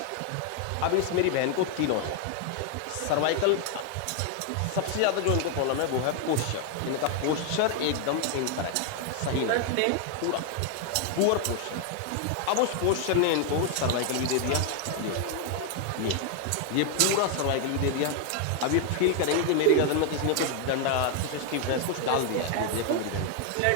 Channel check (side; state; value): both; different; correlation 0.01